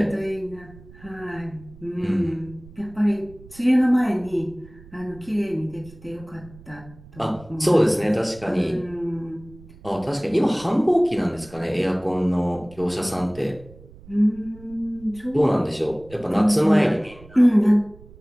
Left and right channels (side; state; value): right; noise; rumble, 21 dB below the sound